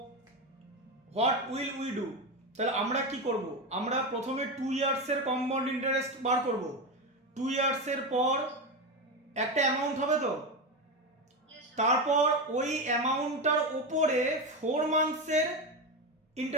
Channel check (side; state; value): both; normal; correlation 0.16